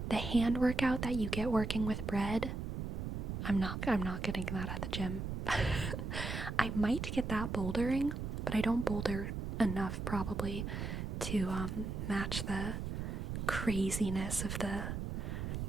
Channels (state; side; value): noise; right; rumble, 3 dB below the sound